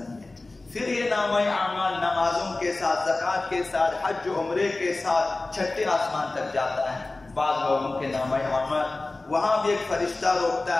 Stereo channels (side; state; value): right; quieter; 3.1 dB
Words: ہے۔ پھر یہ نامہ اعمال نمازوں کے ساتھ، زکوٰۃ کے ساتھ، حج و عمرے کے ساتھ چھٹے آسمان تک جاتا ہے۔ بعض لوگوں کے نامہ اعمال، وہاں بھی ایک فرشتہ روکتا